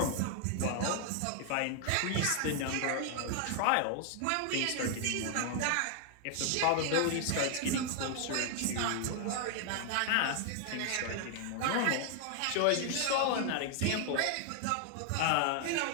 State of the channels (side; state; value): both; different; correlation 0.00